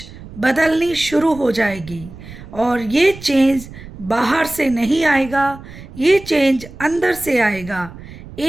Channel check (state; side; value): noise; right; rumble, 16 dB below the sound